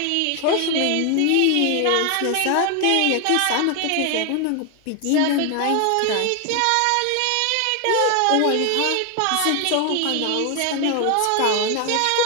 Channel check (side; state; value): both; different; correlation 0.01